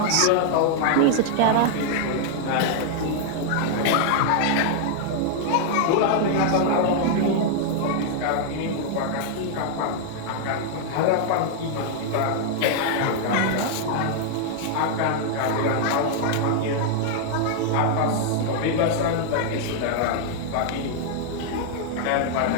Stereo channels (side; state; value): both; different; correlation -0.01